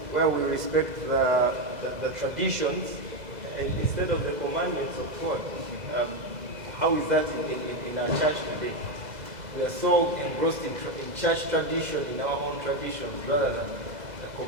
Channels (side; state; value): left; late; 2.0 ms